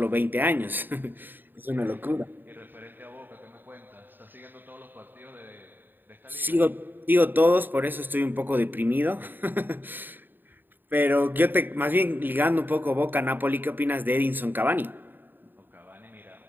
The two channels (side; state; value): left; late; 0.093 ms